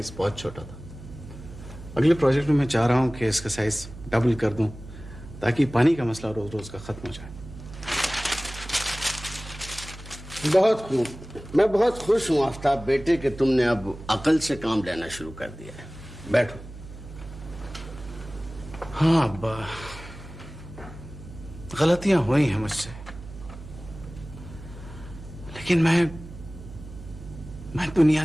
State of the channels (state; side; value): noise; right; hum, 15 dB below the sound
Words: बहुत छोटा था। अगले प्रोजेक्ट में मैं चाह रहा हूं कि इसका साइज डबल कर दूं ताकि पानी का मसला रोज रोज का खत्म हो जाए। बहुत खूब, मैं बहुत खुश हूं आफ्ताब बेटे कि तुमने अब अकल से काम लेना शुरू कर दिया है। बैठो। हाँ अब्बा, गलतियां हुई हैं मुझसे, लेकिन मैं दुनिया